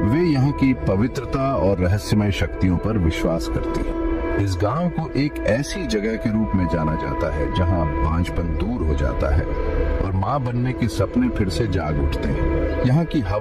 वे यहाँ की पवित्रता और रहस्यमय शक्तियों पर विश्वास करती हैं। इस गांव को एक ऐसी जगह के रूप में जाना जाता है जहां बांझपन दूर हो जाता है और मां बनने के सपने फिर से जाग उठते हैं। यहाँ की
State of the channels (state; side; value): identical; both; correlation 1.00